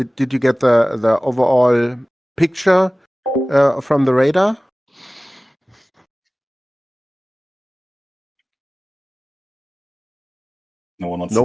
you get the overall picture from the radar? No one wants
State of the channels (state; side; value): normal; both; correlation 0.98